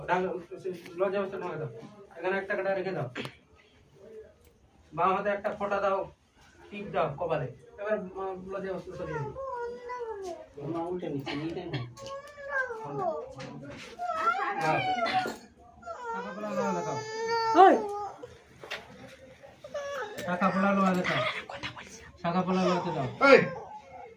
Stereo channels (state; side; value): identical; both; correlation 1.00